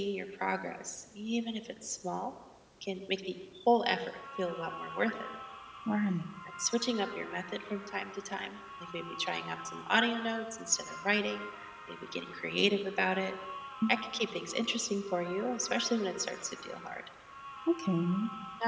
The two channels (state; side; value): identical; both; correlation 1.00